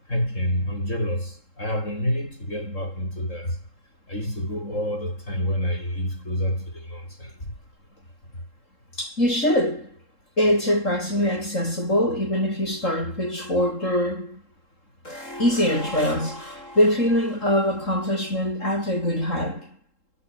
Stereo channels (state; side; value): late; right; 3.7 ms